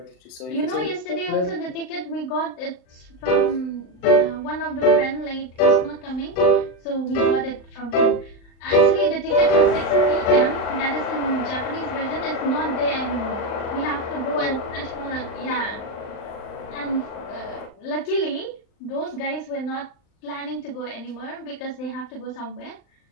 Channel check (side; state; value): right; late; 39 ms